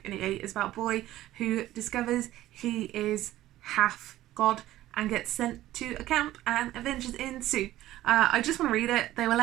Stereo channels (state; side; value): quieter; left; 14.8 dB